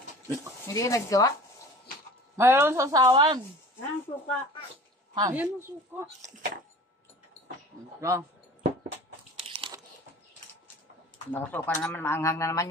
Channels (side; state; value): both; normal; correlation 0.42